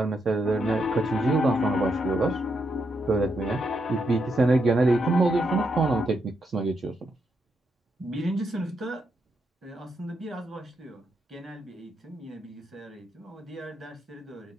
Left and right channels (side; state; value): both; normal; correlation 0.81